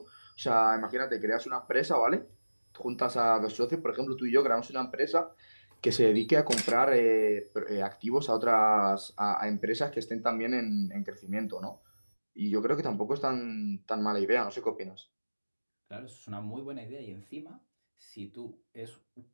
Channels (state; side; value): inverted; both; correlation -1.00